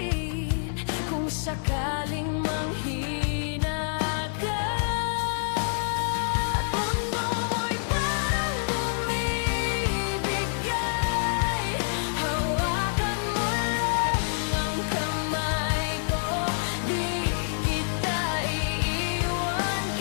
kung sakaling manghina ka. At mundo mo'y parang bumibigay, hawakan mo lang ang kamay ko. Di kita iiwan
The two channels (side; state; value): right; silent; 59 dB below the other